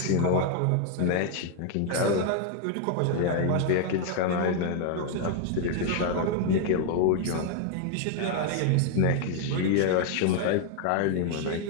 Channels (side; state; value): both; different; correlation 0.00